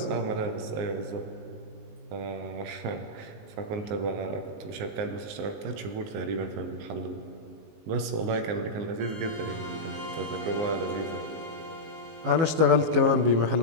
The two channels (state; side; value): late; left; 19 ms